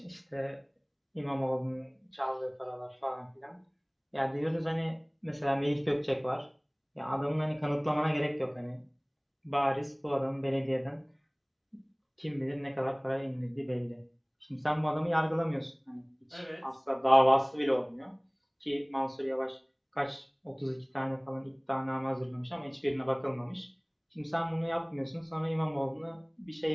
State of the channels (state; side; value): identical; both; correlation 1.00